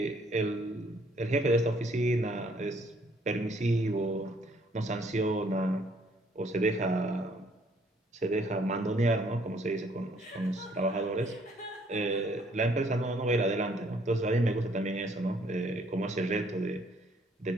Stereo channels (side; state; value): both; normal; correlation 0.64